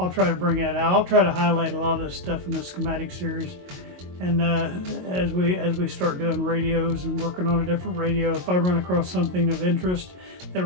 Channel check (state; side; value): late; left; 22 ms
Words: try to bring that out. I'll try to highlight a lot of this stuff in the schematic series. And as we start doing radios and working on a different radio, if I run across something of interest that